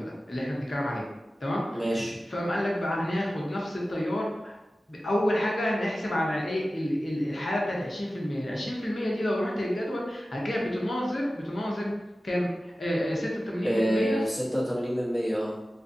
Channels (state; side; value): normal; both; correlation 0.95